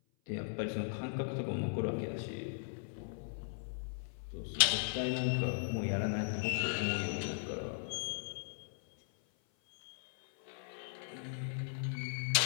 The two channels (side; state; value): right; silent; 53 dB below the other